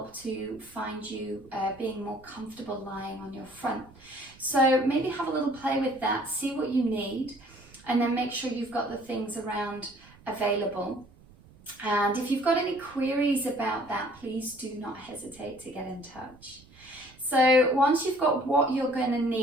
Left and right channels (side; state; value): right; noise; rumble, 24 dB below the sound